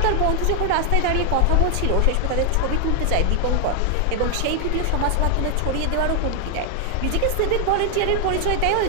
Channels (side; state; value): both; different; correlation 0.00